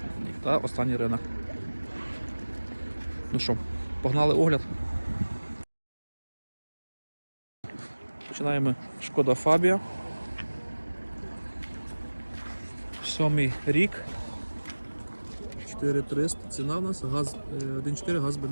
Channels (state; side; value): inverted; both; correlation -1.00